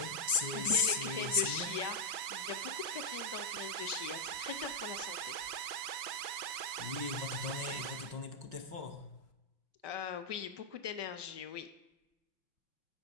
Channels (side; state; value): left; late; 5.5 ms